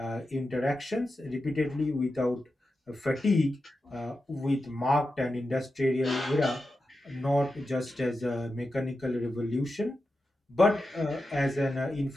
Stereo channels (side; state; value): both; normal; correlation 0.90